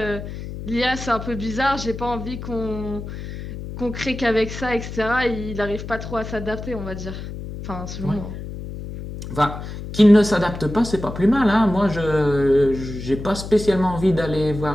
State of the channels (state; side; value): noise; left; hum, 9 dB below the sound